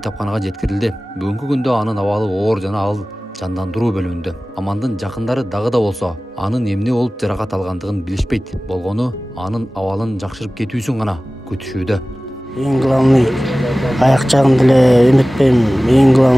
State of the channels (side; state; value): both; normal; correlation 0.97